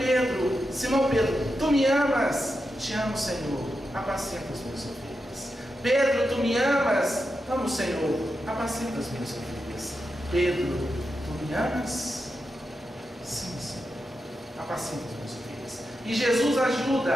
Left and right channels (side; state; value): both; normal; correlation 0.88